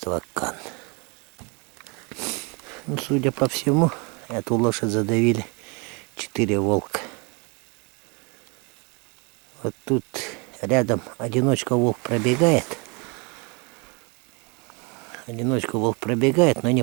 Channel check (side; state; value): left; quieter; 31.4 dB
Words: Кан. Ну, судя по всему, эту лошадь задавили 4 волка. Вот тут рядом одиночка волк пробегает. Но не